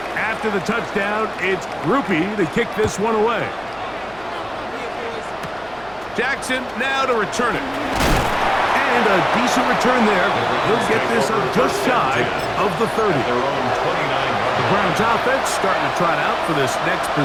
After the touchdown, it's Groupie to kick this one away. Jackson now to return it. And a decent return there. He'll get this up just shy of the 30. The Browns offense starting to trot out for this next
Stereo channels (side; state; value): right; noise; hum, 24 dB below the sound